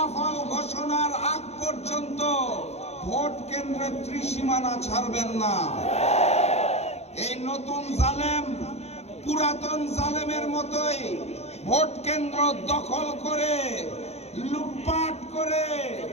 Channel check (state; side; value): late; right; 0.31 ms